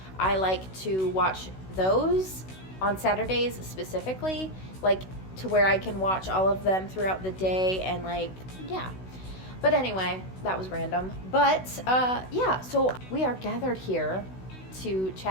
I like to watch those on Saturdays specifically, like to where I can watch all of them throughout the day and like, yeah. But anyway, that was random. But yeah, so we are gathered here to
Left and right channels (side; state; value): right; late; 16 ms